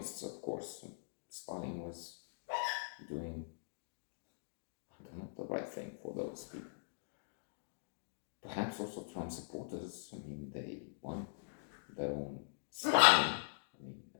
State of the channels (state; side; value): silent; right; digital silence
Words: of course. Stalin was doing, the right thing for those people. Perhaps also Trump supporters. I mean, they want their own Stalin I mean,